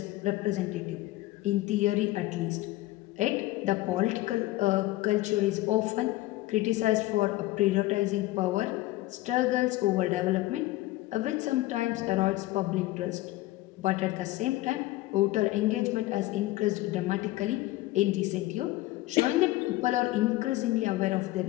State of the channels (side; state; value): right; quieter; 17.9 dB